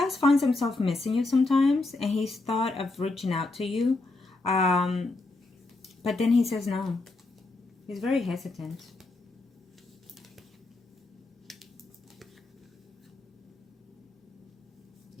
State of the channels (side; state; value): right; quieter; 3.1 dB